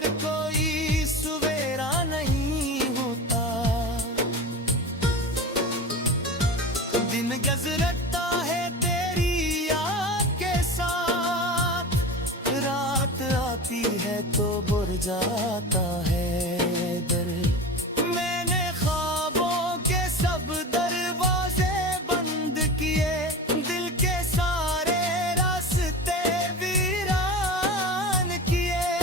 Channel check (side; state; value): both; normal; correlation 0.30